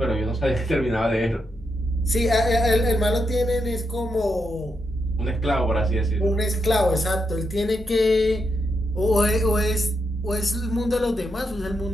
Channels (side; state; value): both; normal; correlation 0.82